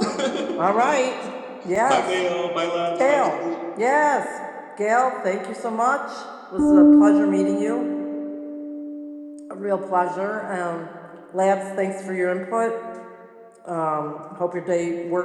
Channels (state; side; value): identical; both; correlation 1.00